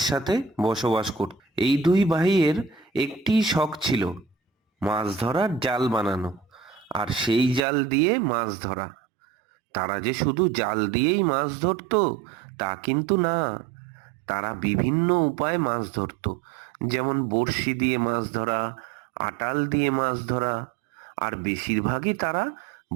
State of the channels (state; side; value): drops out; left; at 7.6 s